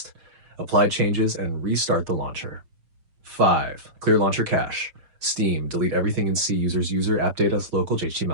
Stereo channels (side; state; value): left; late; 6.7 ms